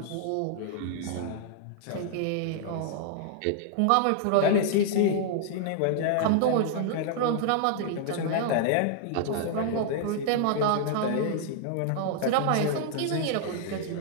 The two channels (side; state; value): both; different; correlation -0.01